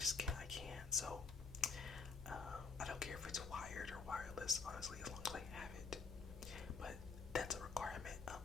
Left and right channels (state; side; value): quieter; right; 4.8 dB